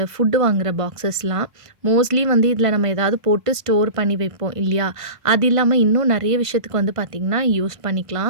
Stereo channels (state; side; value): late; left; 1.5 ms